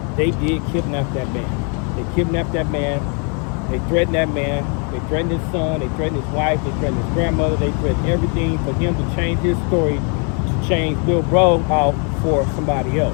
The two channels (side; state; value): right; quieter; 37.7 dB